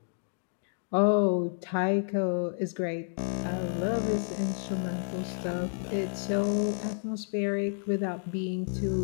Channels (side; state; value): right; silent; digital silence